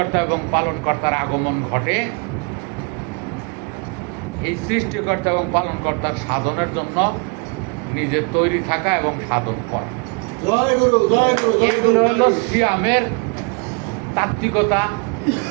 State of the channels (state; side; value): quieter; left; 34.8 dB